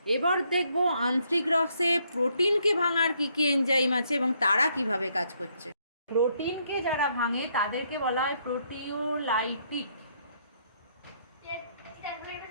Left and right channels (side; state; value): both; inverted; correlation -0.71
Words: এবার দেখব আন্ত্রিক রসে প্রোটিনকে ভাঙার কী কী এনজাইম আছে এবং তারা কিভাবে কাজ করছে। প্রোটিনকে যারা ভাঙে তাদেরকে বলা হয় প্রোটিওলাইটিক